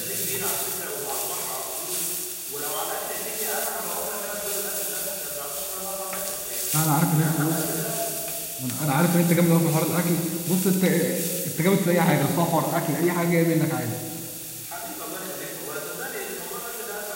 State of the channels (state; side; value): identical; both; correlation 1.00